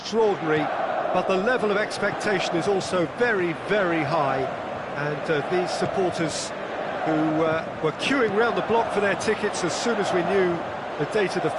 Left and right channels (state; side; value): identical; both; correlation 1.00